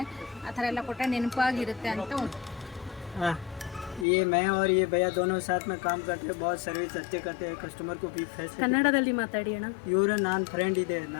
ಆ ಥರ ಎಲ್ಲ ಕೊಟ್ಟರೆ ನೆನಪಾಗಿರುತ್ತೆ ಅಂತ ये मैं और ये भैया दोनों साथ में काम करते हैं, बहुत सर्विस अच्छे करते हैं, कस्टमर को भी फैसिलिटी। ಕನ್ನಡದಲ್ಲಿ ಮಾತಾಡಿ ಅಣ್ಣ. ಇವರು ನಾನು ಫ್ರೆಂಡ್ ಇದೆ,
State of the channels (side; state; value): right; drops out; at 4.0 s